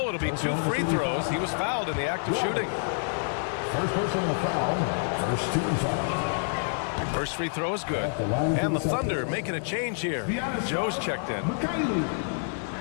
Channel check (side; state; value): right; silent; 60 dB below the other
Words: it'll be 2 free throws. He was fouled in the act of shooting. First personal foul, first team foul. First free throw is good. And the Thunder making a change here. Joe's checked in.